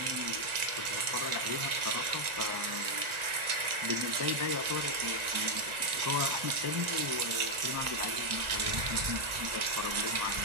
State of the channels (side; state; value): left; late; 1.4 ms